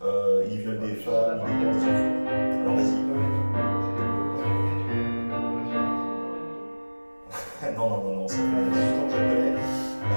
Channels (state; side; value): inverted; both; correlation -1.00